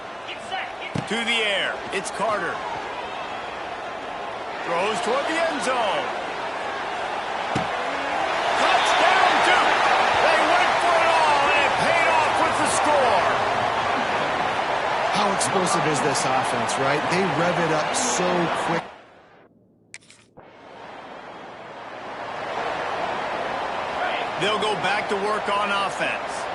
To the air, it's Carter. Throws toward the end zone. Touchdown, Duke! They went for it all, and it paid off with the score. How explosive is this offense, right? They rev it up so quick. They'll go back to work on offense.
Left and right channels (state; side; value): identical; both; correlation 1.00